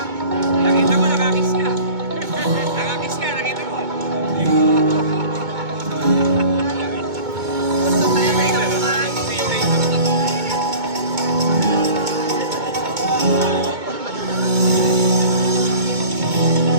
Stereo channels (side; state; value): left; late; 2.2 ms